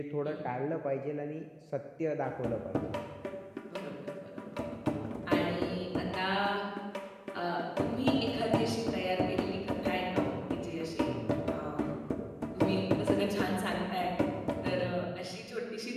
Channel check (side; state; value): both; identical; correlation 1.00